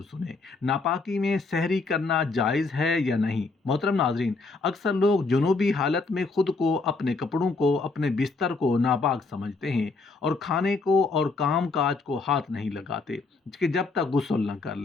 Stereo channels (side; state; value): right; quieter; 3.9 dB